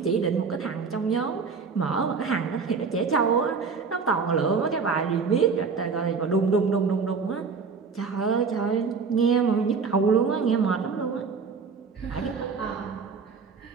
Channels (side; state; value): left; quieter; 5.2 dB